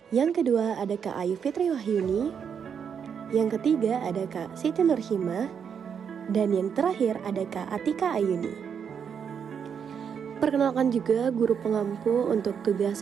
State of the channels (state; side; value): quieter; left; 7.3 dB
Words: yang kedua ada Kak Ayu Fitri Wahyuni, yang ketiga ada Kak Siti Nurhimah, dan yang terakhir ada Kak Atika Ayuni. Perkenalkan juga guru pengampu untuk tugas